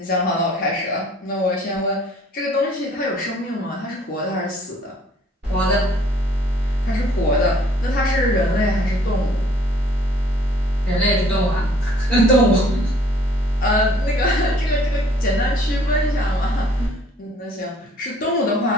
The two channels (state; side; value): normal; both; correlation 0.58